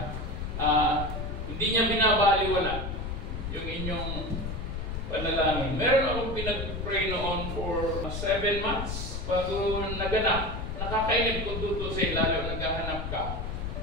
hindi niya binabaliwala yung inyong panalangin. Meron akong pinag-pray noon for 7 months bago naganap. Nakakainip ko tutusin lalo naghahanap ka.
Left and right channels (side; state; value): left; noise; rumble, 5 dB below the sound